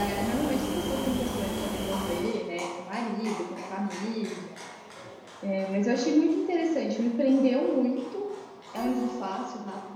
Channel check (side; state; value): both; identical; correlation 1.00